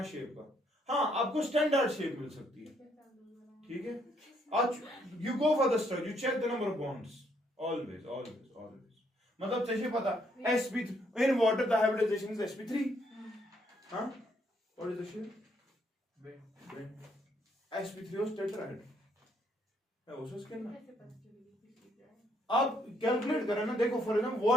शेप का. हाँ आपको स्टैंडर्ड शेप मिल सकती है. ठीक है. You go for the structure. You check the number of bonds. Always. मतलब चाहिए पता. sp in water the hybridization is sp3. हाँ? What is the shape? Bend. sp3 was tetrahedral. है वो उसके ना. आप कैलकुलेट करें ना. देखो फॉर एग्जांपल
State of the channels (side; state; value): both; normal; correlation 0.70